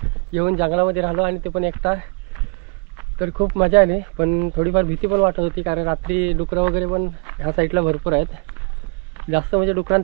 येऊन जंगलामध्ये राहिलो आणि ते पण एकटा. तर खूप मजा आली, पण थोडीफार भीती पण वाटत होती, कारण रात्री डुकरं वगैरे पण ह्या साईडला भरपूर आहेत. जास्त म्हणजे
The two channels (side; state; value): left; quieter; 33.6 dB